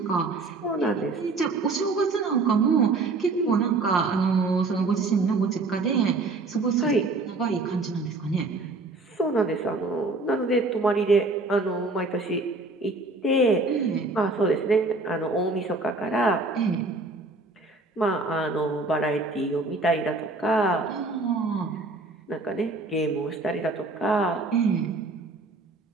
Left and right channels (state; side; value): quieter; left; 3.4 dB